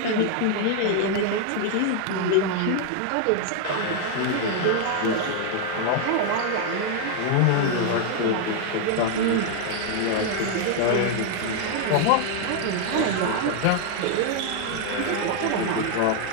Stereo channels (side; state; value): both; different; correlation 0.00